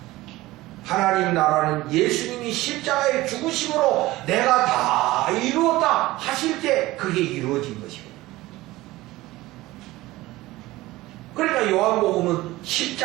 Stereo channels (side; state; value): left; quieter; 18.2 dB